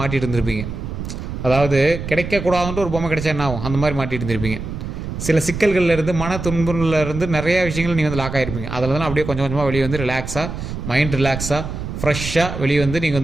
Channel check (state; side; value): noise; right; rumble, 7 dB below the sound